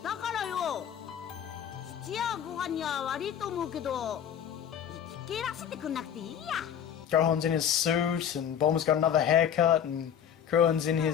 だからよ、父やご飯には悪いと思うけど、生き切らせてくんなくていいや。 Gohan's in his suit, and Bulma's got another haircut, and Krillin's in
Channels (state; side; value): quieter; right; 8.9 dB